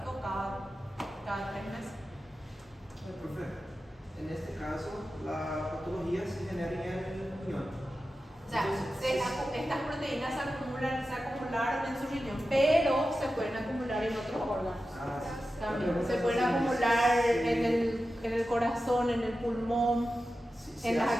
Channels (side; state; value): both; normal; correlation 0.92